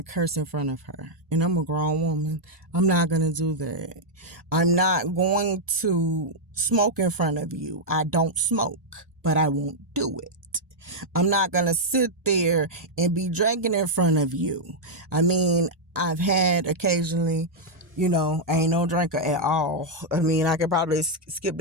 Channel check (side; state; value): both; normal; correlation -0.03